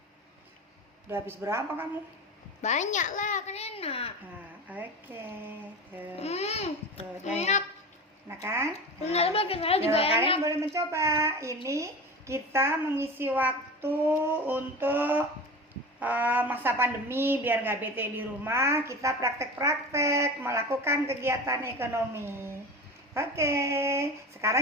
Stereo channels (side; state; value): both; normal; correlation 0.30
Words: Udah habis berapa kamu? Banyak lah, kan enak. Oke. Enak. Enak kan? Ternyata saya juga enak. Kalian boleh mencoba. Ini kita mengisi waktu untuk masa pandemi biar nggak bete di rumah. Kita praktek-praktek melakukan kegiatan ekonomi. Oke,